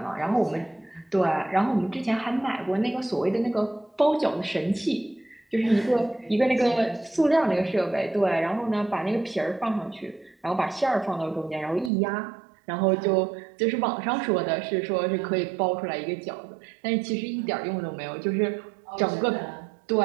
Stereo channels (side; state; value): left; drops out; at 11.9 s